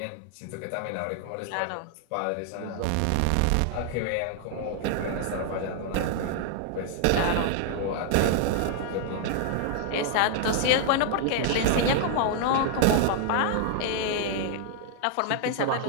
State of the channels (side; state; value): both; different; correlation 0.00